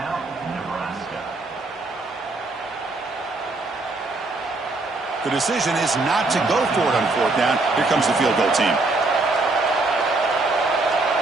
Nebraska. The decision is not to go for it on 4th down. Here comes the field goal team.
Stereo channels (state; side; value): quieter; left; 3.2 dB